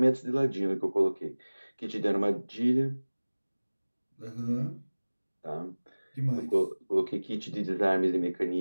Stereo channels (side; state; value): both; inverted; correlation -1.00